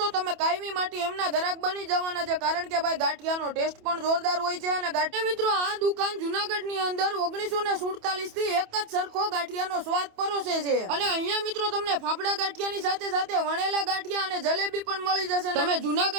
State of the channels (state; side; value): late; left; 28 ms